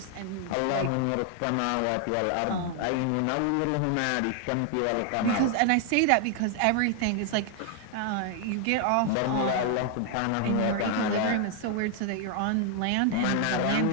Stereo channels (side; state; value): both; different; correlation 0.00